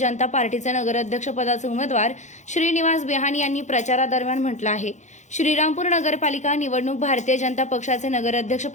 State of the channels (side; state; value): right; late; 0.34 ms